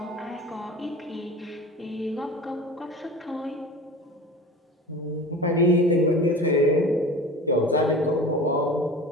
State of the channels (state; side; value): normal; both; correlation 0.35